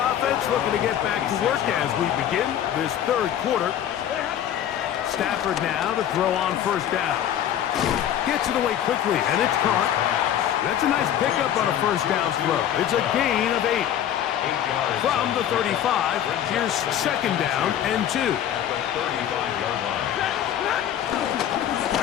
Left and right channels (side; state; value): right; quieter; 10.5 dB